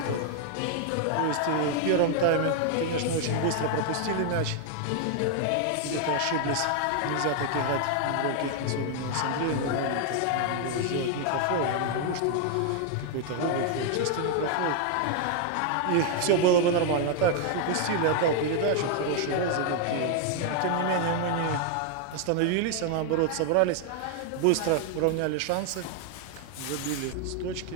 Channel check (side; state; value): both; different; correlation 0.00